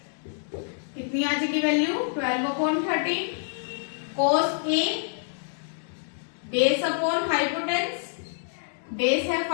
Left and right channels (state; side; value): silent; right; digital silence